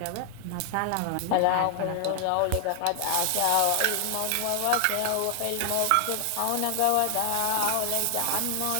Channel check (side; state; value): both; different; correlation 0.00